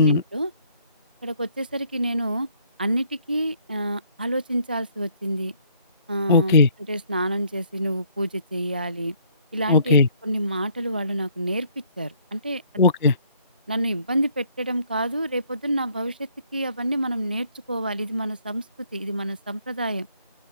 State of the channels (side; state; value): both; inverted; correlation -0.63